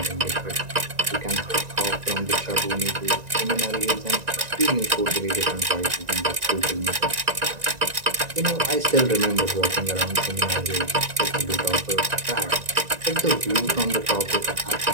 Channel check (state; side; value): late; left; 1.9 ms